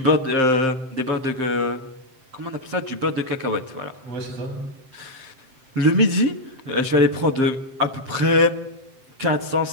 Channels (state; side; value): late; left; 7.7 ms